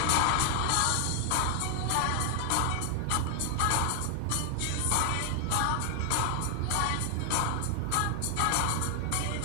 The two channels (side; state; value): both; different; correlation 0.00